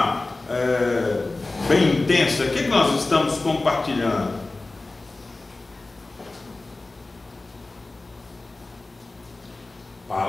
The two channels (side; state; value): right; quieter; 3.2 dB